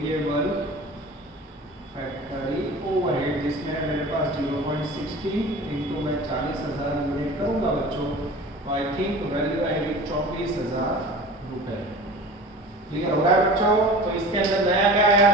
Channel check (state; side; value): normal; both; correlation 0.38